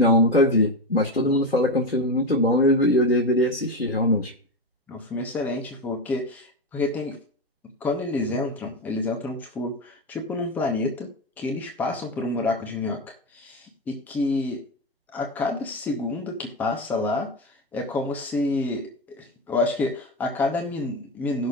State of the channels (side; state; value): both; normal; correlation 0.16